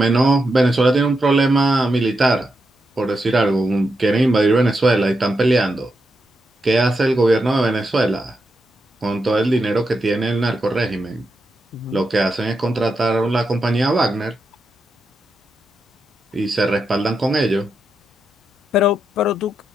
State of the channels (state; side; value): normal; both; correlation 0.85